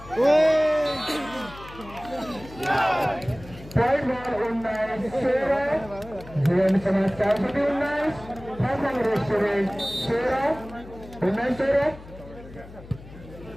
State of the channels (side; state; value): left; noise; hum, 17 dB below the sound